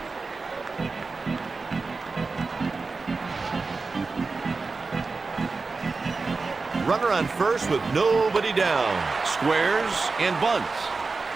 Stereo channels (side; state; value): left; quieter; 4.1 dB